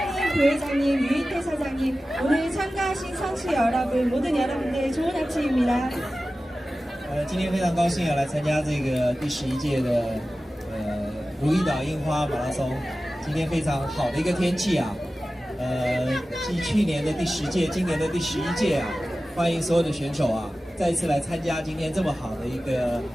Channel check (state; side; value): normal; both; correlation 0.95